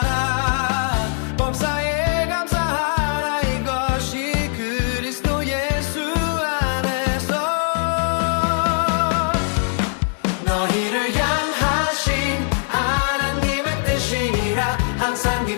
범사에 감사하라. 이것이 그리스도 예수 안에서 너희를 향하신 하나님의 뜻이니라. 항상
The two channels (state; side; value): silent; right; 57 dB below the other